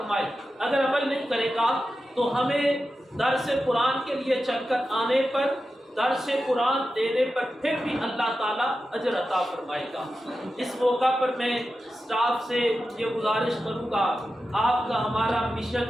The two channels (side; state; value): both; normal; correlation 0.91